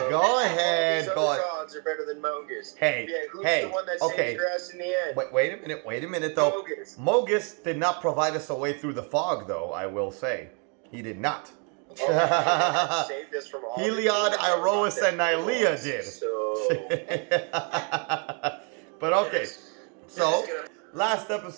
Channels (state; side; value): quieter; left; 38.1 dB